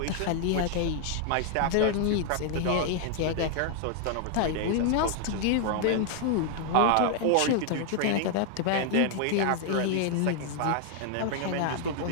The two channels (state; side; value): different; both; correlation 0.00